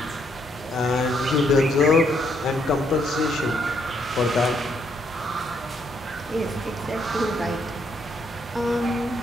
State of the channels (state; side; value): normal; both; correlation 0.73